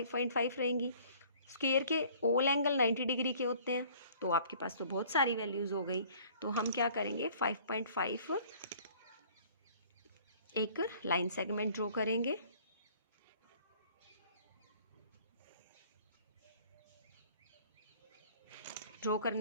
रहेंगी। स्क्वायर के ऑल एंगल 90 डिग्री के होते हैं, तो आपके पास तो बहुत सारी वैल्यूज़ हो गई। तो हम क्या करेंगे 5.5 एक लाइन सेगमेंट ड्रॉ करेंगे, ड्रॉ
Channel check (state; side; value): inverted; both; correlation -0.54